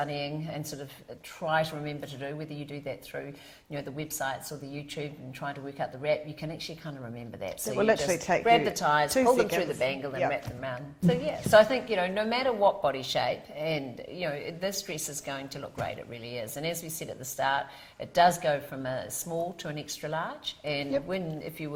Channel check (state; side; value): identical; both; correlation 1.00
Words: and sort of try to remember to do, whether you do that through, you know, the websites or the YouTube and trying to work out the wrap. You can actually kind of remember that. So It will you literally just take grab you the ties, 2 pull them through seconds. the bangle and Yep. wrap them around. So yeah, so I think, you know, no matter what body shape, and, you know, this dress is going to look great. It really is. And as we said at the start, it does go from a small to an extra large. And Yep. if you